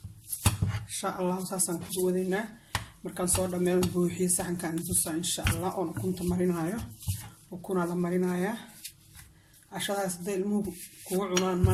insha allah. saasaan ku wadaynaa markaan soo dhammeeyo buuxiyo saxankaan tusaa insha allah. oon ukunta marinayo. ukunaa la marinayaa. cashadaas hadday ilmuhu kugu cunaan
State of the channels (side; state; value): both; identical; correlation 1.00